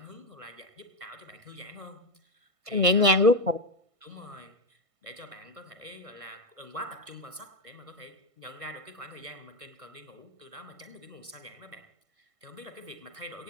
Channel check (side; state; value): left; late; 1.6 ms